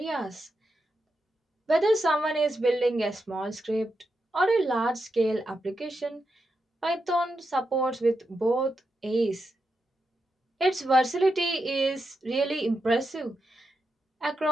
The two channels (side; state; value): both; normal; correlation 0.86